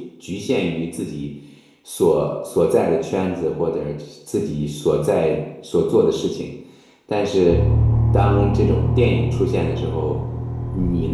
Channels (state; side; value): identical; both; correlation 1.00